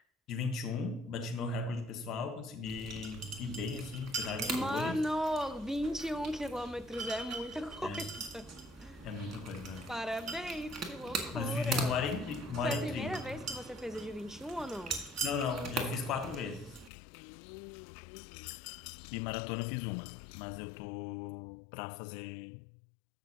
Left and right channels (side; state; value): right; drops out; at 16.9 s